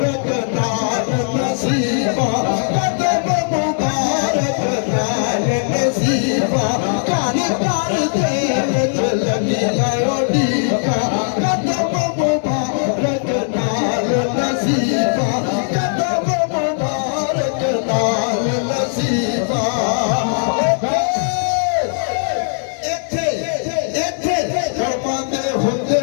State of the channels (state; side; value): silent; right; digital silence